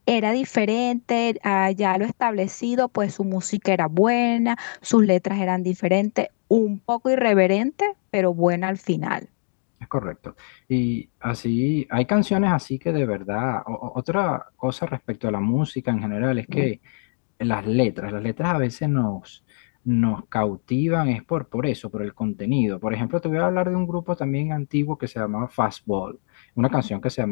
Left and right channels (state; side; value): silent; right; 63 dB below the other